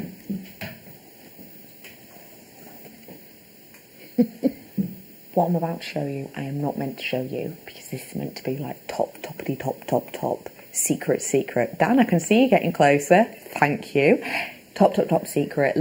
What I'm about to show you, I am not meant to show you because this is meant to be like top, secret. Dan, I can see you getting closer. Thank you. Top secret,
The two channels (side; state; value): both; identical; correlation 1.00